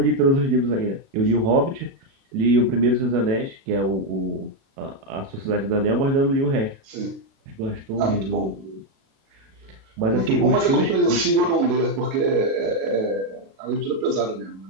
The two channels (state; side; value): late; left; 36 ms